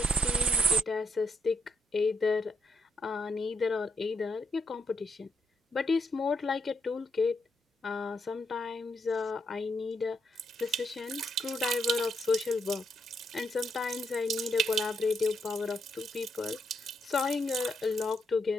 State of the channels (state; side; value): normal; both; correlation 0.78